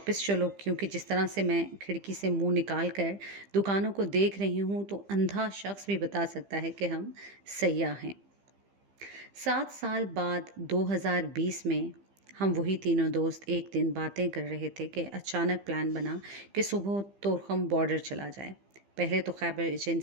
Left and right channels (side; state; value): left; late; 15 ms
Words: چلو، کیونکہ جس طرح سے میں کھڑکی سے منہ نکال کر دکانوں کو دیکھ رہی ہوں تو اندھا شخص بھی بتا سکتا ہے کہ ہم سیاح ہیں۔ 7 سال بعد 2020 میں ہم وہی تینوں دوست ایک دن باتیں کر رہے تھے کہ اچانک پلان بنا کہ صبح طورخم بارڈر چلا جائے۔ پہلے تو خیبر